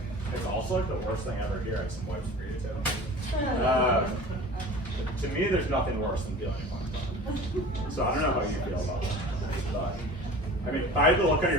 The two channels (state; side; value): normal; both; correlation 0.40